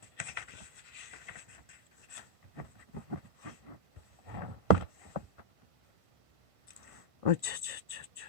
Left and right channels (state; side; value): late; left; 1.5 ms